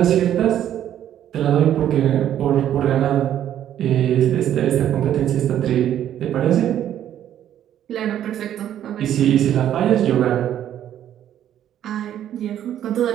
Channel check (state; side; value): quieter; left; 10.9 dB